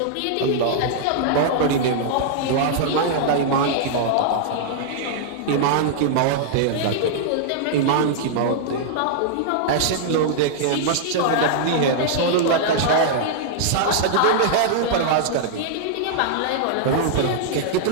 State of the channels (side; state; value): both; different; correlation -0.01